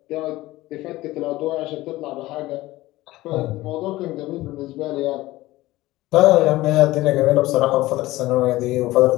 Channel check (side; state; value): right; quieter; 17.8 dB